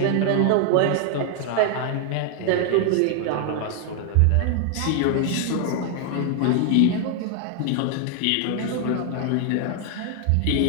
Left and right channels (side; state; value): both; different; correlation 0.00